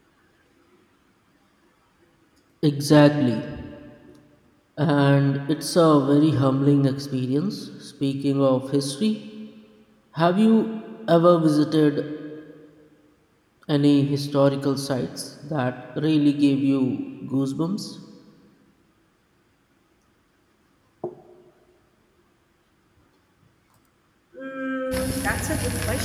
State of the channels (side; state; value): both; identical; correlation 1.00